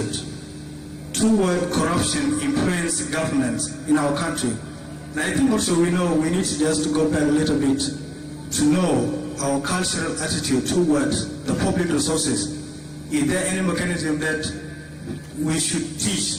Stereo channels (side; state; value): both; identical; correlation 1.00